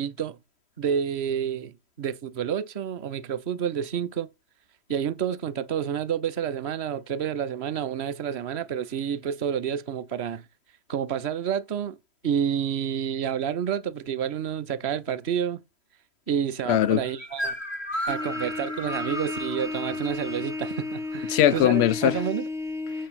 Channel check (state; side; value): late; right; 3.1 ms